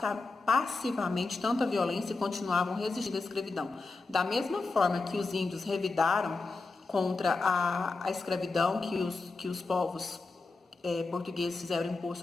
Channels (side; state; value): right; quieter; 3.8 dB